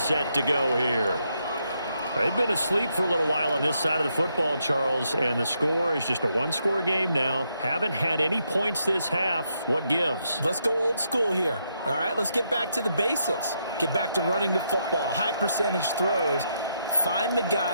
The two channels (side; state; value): both; inverted; correlation -0.78